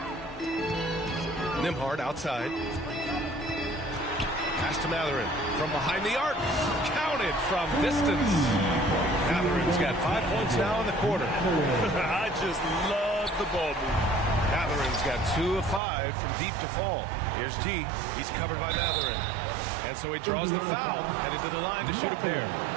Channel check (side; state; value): left; drops out; at 15.8 s